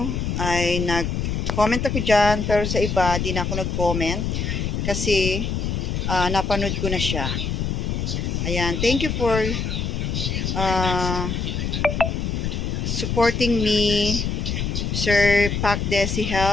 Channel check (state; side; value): noise; left; rumble, 1 dB below the sound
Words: ay nag-comment ako dyan, pero sa iba, di na ako nag-comment kasi napanood ko na siya. Ayan, thank you for supporting me, Sir Pac Desi